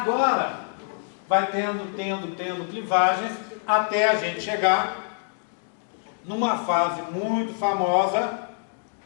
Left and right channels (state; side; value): silent; right; 61 dB below the other